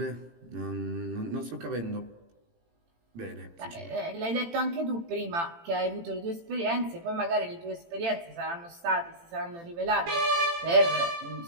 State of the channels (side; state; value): left; late; 18 ms